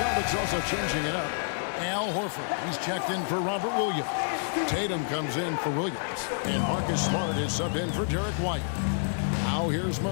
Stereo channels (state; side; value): silent; right; digital silence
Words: also changing it up. Al Horford, he's checked in for Robert Williams. Tatum comes in for Williams. And Marcus Smart is subbed in for Derek White. Now here's